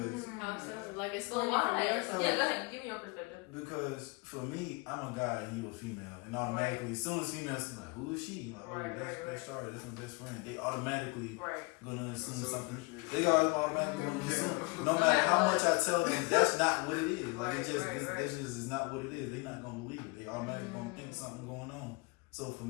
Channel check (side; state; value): right; quieter; 28.1 dB